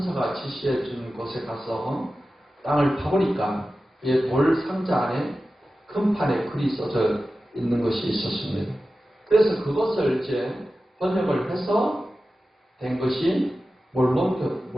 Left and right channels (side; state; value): both; normal; correlation 0.94